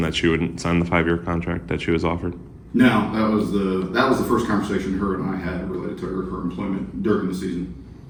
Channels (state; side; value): identical; both; correlation 1.00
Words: that she wouldn't sign the 5-year contract that she was offered? No, that was the first conversation her and I had related to her employment during the season.